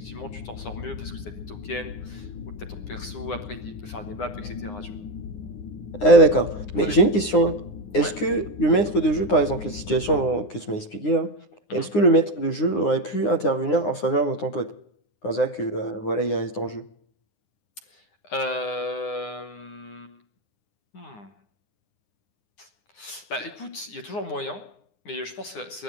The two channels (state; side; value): late; right; 9.8 ms